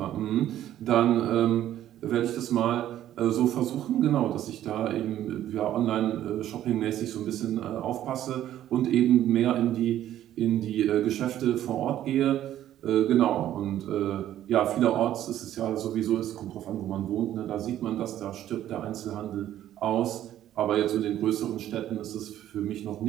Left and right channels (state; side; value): quieter; left; 12.2 dB